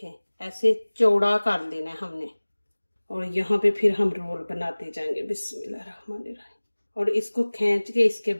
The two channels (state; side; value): inverted; both; correlation -1.00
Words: ऐसे चौड़ा कर देना है हमने। और यहाँ पे फिर हम रोल बनाते जाएंगे। बिस्मिल्लाहिर्रहमानिर्रहीम। और इसको खींच के इसके